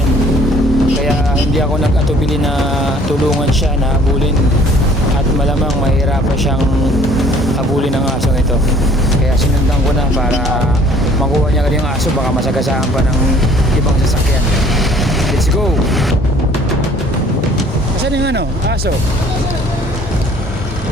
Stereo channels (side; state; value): both; normal; correlation 0.56